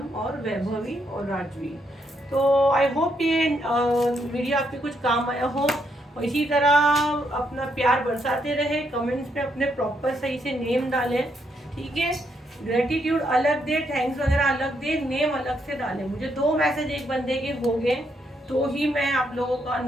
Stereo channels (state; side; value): normal; both; correlation 0.76